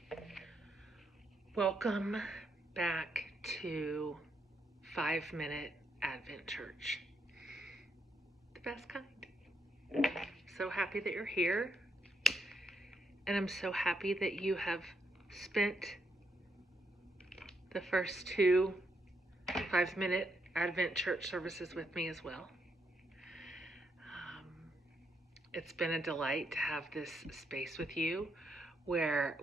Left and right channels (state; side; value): normal; both; correlation 0.78